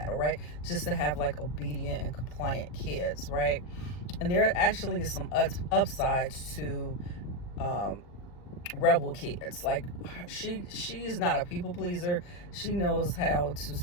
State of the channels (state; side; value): late; right; 40 ms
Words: all right? Just to have like obedient and compliant kids, right? And there actually is some upsides to rebel kids. Like, she's not a people pleaser. She knows how to